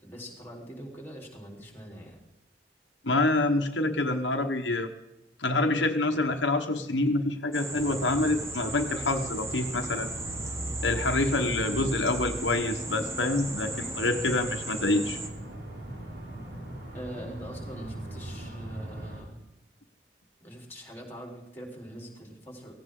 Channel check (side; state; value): both; normal; correlation 0.41